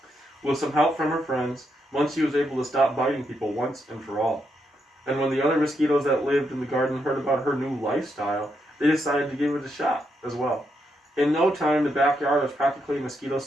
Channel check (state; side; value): normal; both; correlation 0.80